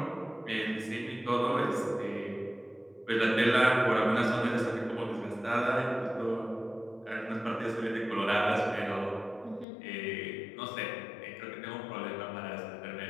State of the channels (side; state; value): right; drops out; at 9.7 s